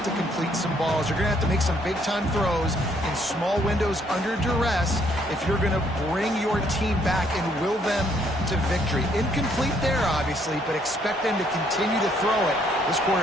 to complete some balls. You're going to have to make some big-time throws in small windows under duress if you're going to bring your team back and will them to victory. Incomplete there, obviously, but expect them to continue to throw it. This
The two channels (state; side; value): normal; both; correlation 0.68